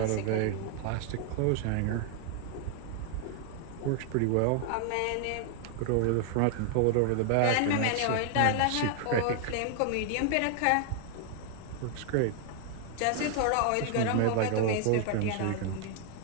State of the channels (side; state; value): both; different; correlation 0.00